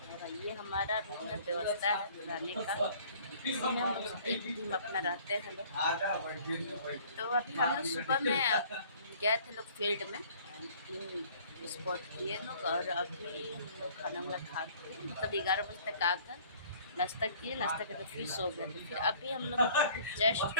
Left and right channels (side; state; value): both; inverted; correlation -0.54